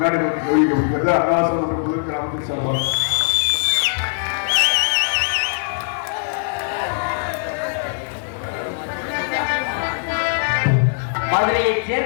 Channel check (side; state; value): right; silent; digital silence